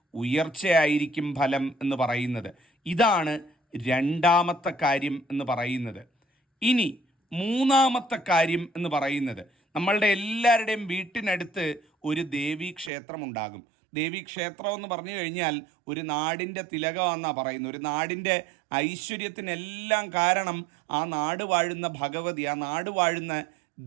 ഉയർച്ചയായിരിക്കും ഫലം എന്ന് പറയുന്നത്. ഇതാണ് രണ്ടാമത്തെ കാര്യം എന്ന് പറയുന്നത്. ഇനി മൂന്നാമത്തെ കാര്യം എന്ന് പറയുന്നത്, നമ്മളുടെ എല്ലാവരുടെയും വീട്ടിനടുത്ത് ഒരു ദേവീ ക്ഷേത്രമുണ്ടാകും. ദേവീക്ഷേത്രം എന്ന് പറഞ്ഞു കഴിഞ്ഞാൽ ഒരു നാടിൻ്റെ തിലകമെന്നാണ് പറയുന്നത്. ഒരു നാടിൻ്റെ ഐശ്വര്യത്തിനെല്ലാം കാരണം ആ നാട് വാഴുന്ന ഭഗവതി, ആ നാട് വാഴുന്ന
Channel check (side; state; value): left; drops out; at 12.9 s